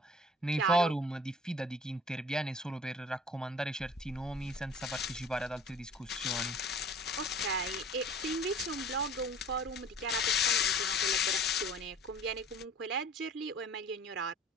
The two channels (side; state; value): both; normal; correlation 0.46